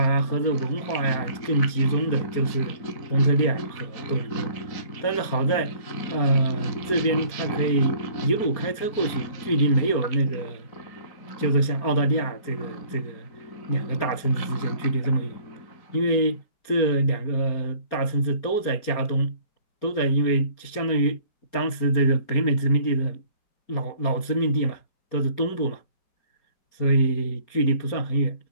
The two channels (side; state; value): right; late; 4.3 ms